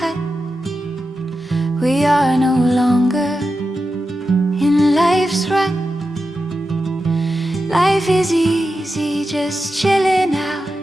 We are no longer in life's run. Life is easy, just chilling out.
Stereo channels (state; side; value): normal; both; correlation 0.90